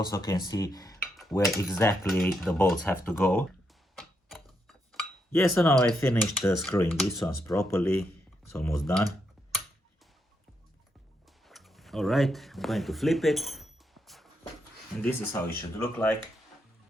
can see where exactly the bolts have to go. Yes, so now I finished screwing these ones properly. It's almost done. Alright, I'm going to flip it. And this is how it should look like.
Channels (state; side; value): normal; both; correlation 0.80